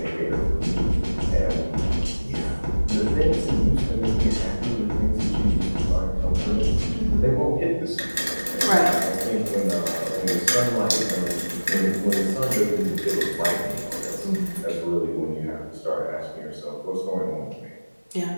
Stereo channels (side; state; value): both; inverted; correlation -1.00